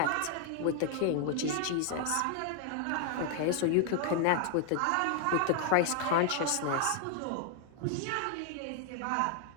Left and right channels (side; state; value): both; different; correlation 0.00